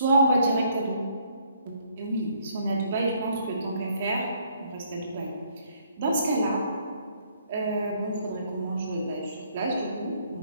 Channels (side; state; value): both; inverted; correlation -0.66